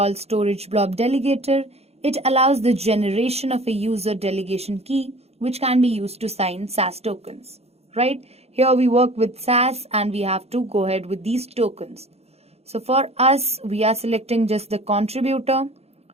storage blob delegator. It allows the generation of a user delegation key, which can be used to sign SAS tokens, right? Here we work with SAS and we have to go ahead with these tokens. So for us, we are selecting just the contributor.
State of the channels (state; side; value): late; left; 0.30 ms